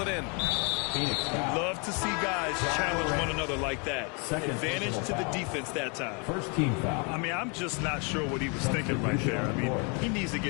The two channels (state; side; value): quieter; right; 34.4 dB